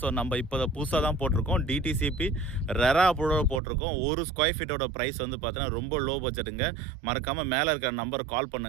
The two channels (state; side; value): drops out; left; at 3.6 s